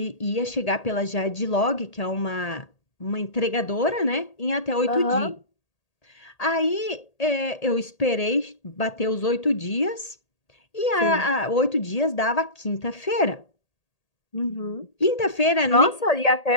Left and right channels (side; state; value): right; late; 1.8 ms